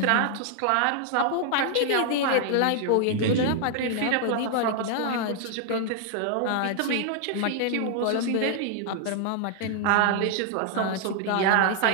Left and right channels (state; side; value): different; both; correlation 0.00